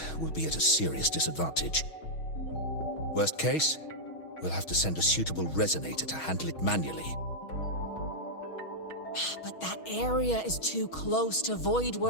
we'll be at a serious disadvantage. Worst case, we'll have to send a suitable resonator to handle it manually. But that area is too close to void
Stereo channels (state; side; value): late; right; 6.3 ms